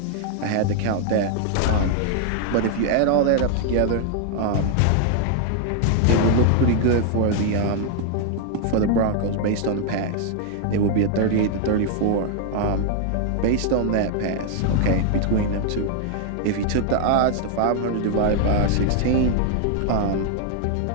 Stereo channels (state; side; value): different; both; correlation 0.00